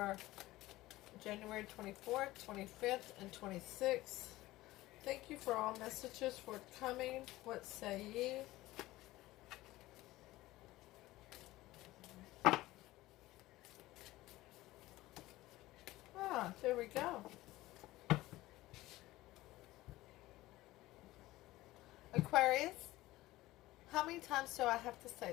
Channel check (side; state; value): right; quieter; 17.6 dB